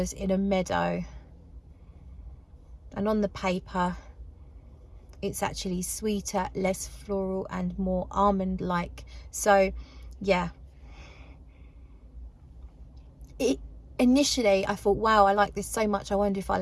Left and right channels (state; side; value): identical; both; correlation 1.00